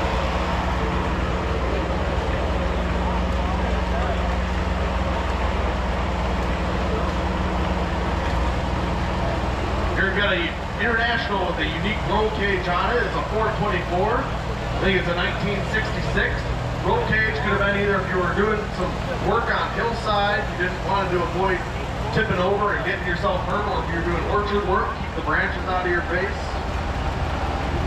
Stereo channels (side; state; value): both; identical; correlation 1.00